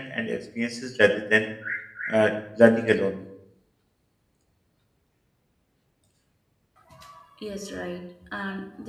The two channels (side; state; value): both; identical; correlation 1.00